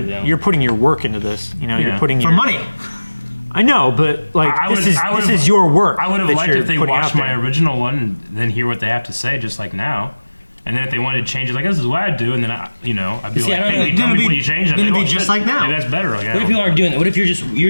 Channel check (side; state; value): both; inverted; correlation -1.00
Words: them. you're putting your work into this. You know, Yeah. you're putting For your money. I know, but like I this would've- is your work. I would have that liked you're if they putting watched out my there. original one and then hear what they have to say, just like now. And then if they wanted to change it, like this is what I do, and then I'd be See, I like, don't hey, know. will you tell Then me it'd what be- you changed? And then it'd they'd be go, just "Shit, like now." maybe that's better. Like, What if people aren't doing that? What if you're